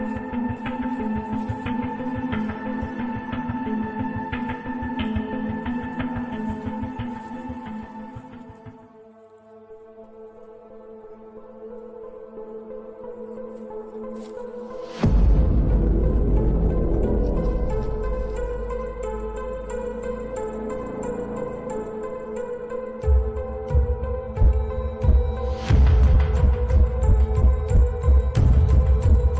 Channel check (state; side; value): identical; both; correlation 1.00